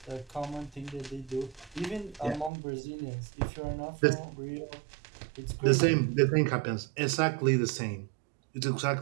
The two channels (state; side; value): drops out; left; at 2.5 s